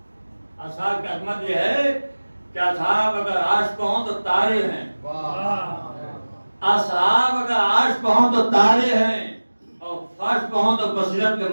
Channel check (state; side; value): inverted; both; correlation -1.00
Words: اصحاب کی عظمت یہ ہے کہ اصحاب اگر عرش پہ ہوں تو تارے ہیں. اصحاب اگر عرش پہ ہوں تو تارے ہیں، اور فرش پہ ہوں تو بصیرت کے